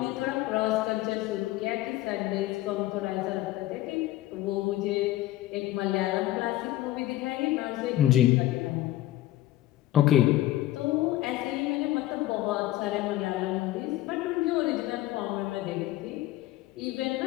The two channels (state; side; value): quieter; right; 15.4 dB